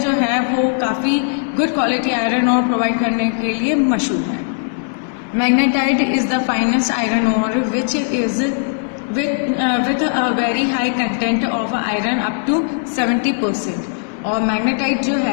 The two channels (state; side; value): silent; right; digital silence